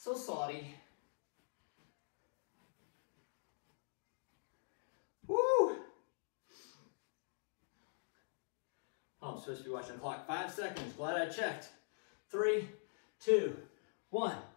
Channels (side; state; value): right; silent; digital silence